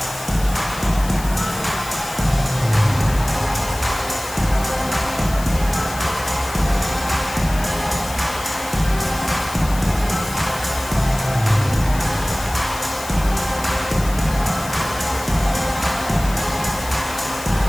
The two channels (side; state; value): left; noise; hiss, 13 dB below the sound